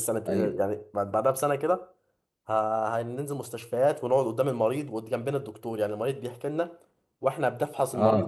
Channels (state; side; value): identical; both; correlation 1.00